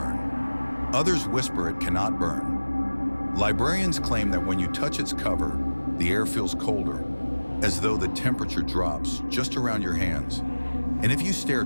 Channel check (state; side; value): inverted; both; correlation -1.00